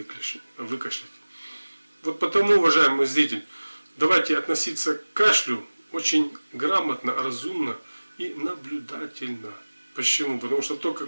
Вот потому, уважаемый зритель, давайте относиться к кашлю очень грамотно, разумно и наблюдательно. Почему? Потому что только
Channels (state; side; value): inverted; both; correlation -1.00